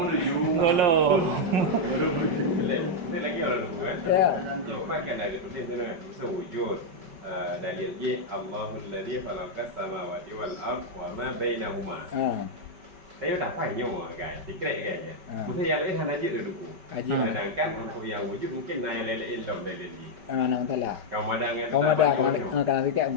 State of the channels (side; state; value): left; late; 5.2 ms